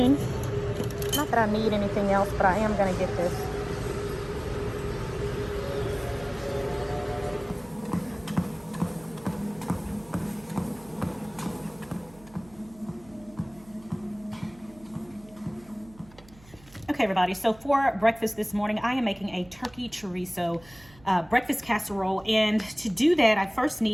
Not that I need anything else, but I am going to get this. Okay, everybody, so for breakfast this morning, I am making a turkey chorizo breakfast casserole. And to do that, I first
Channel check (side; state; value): right; noise; hum, 24 dB below the sound